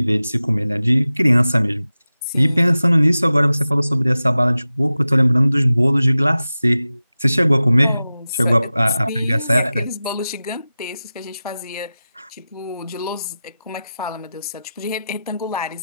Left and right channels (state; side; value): inverted; both; correlation -0.95